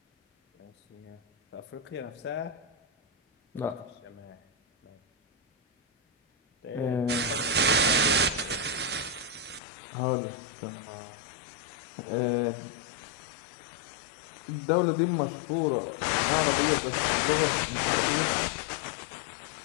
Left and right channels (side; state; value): right; drops out; at 9.6 s